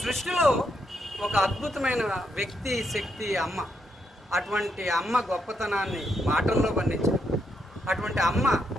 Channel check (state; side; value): normal; both; correlation 0.79